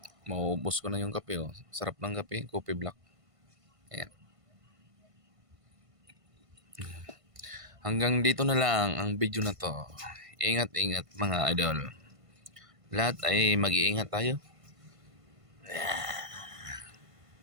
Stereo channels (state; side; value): late; left; 1.5 ms